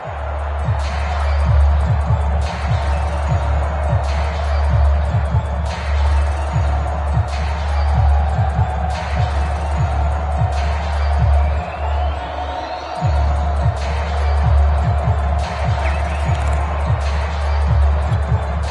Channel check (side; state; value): both; identical; correlation 1.00